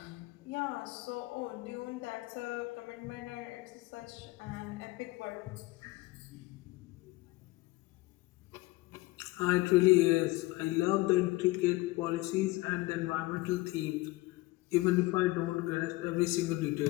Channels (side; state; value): right; quieter; 20.5 dB